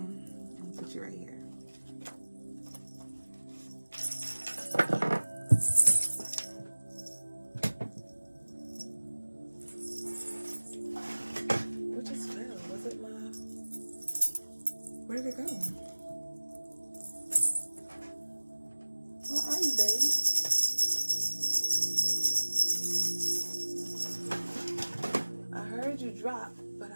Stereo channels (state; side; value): inverted; both; correlation -1.00